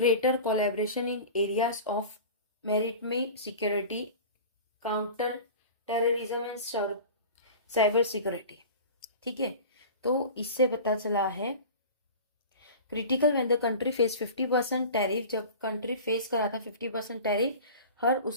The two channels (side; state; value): both; inverted; correlation -0.36